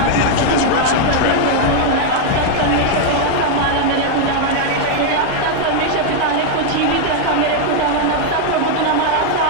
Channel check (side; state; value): both; different; correlation 0.00